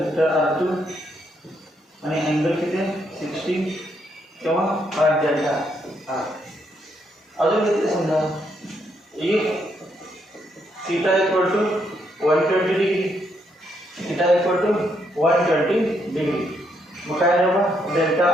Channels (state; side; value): normal; both; correlation 0.75